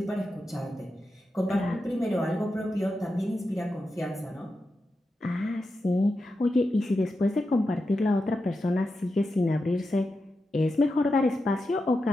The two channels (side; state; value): both; normal; correlation 0.89